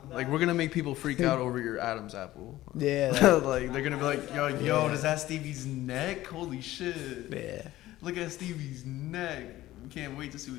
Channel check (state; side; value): quieter; right; 15.6 dB